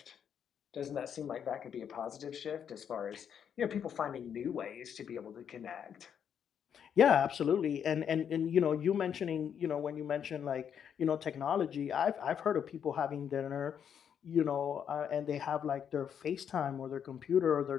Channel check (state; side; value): quieter; right; 8.2 dB